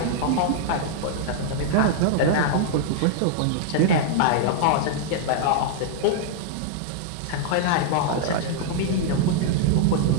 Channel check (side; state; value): both; different; correlation -0.01